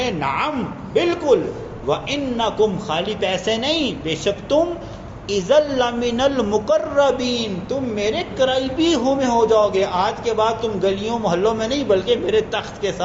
نعم بالکل، وَإِنَّكُمْ خالی پیسے نہیں، بے شک تم اِذًا لَمِنَ الْمُقَرَّبِينَ تم میرے قریبی میں ہو جاؤ گے. آج کے بعد تم گلیوں محلوں میں نہیں بلکہ میرے تخت کے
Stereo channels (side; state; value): both; identical; correlation 1.00